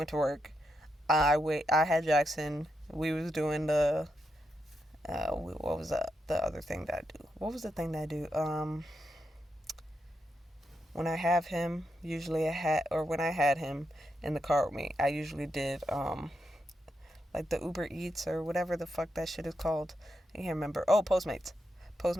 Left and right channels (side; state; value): both; normal; correlation 0.84